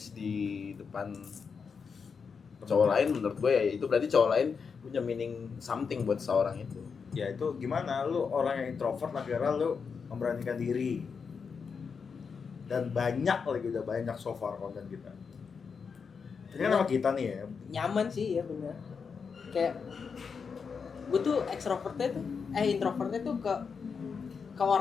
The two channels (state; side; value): quieter; right; 5.8 dB